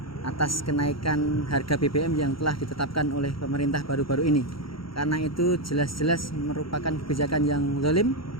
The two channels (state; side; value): late; right; 0.74 ms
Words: atas kenaikan harga BBM yang telah ditetapkan oleh pemerintah baru-baru ini, karena itu jelas-jelas merupakan kebijakan yang zalim